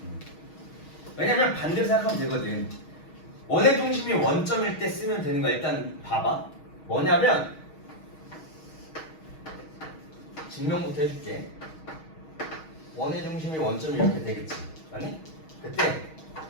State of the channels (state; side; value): late; right; 6.3 ms